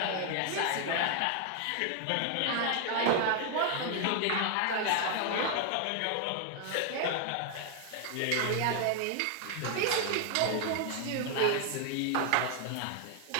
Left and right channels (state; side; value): different; both; correlation 0.00